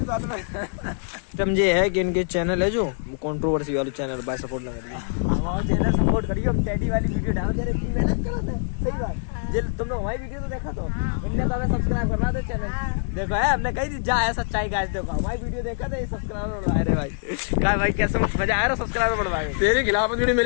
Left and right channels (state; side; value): silent; right; digital silence